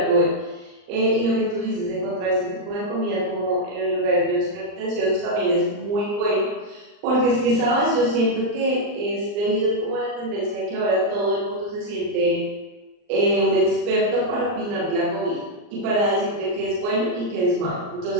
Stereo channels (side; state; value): left; late; 39 ms